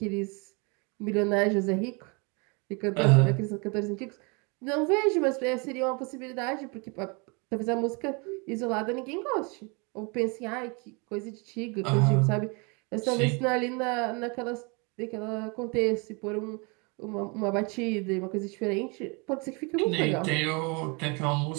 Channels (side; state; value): left; quieter; 31.3 dB